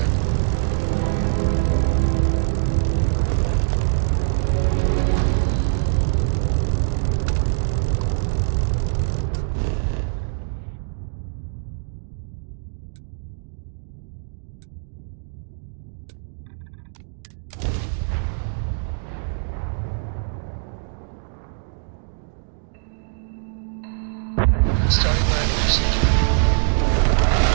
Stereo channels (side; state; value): left; silent; digital silence